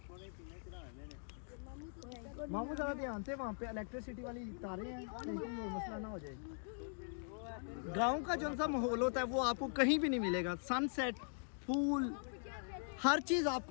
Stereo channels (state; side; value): silent; right; digital silence